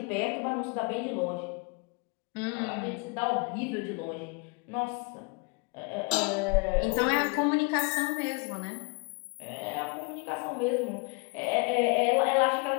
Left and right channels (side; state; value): right; quieter; 32.1 dB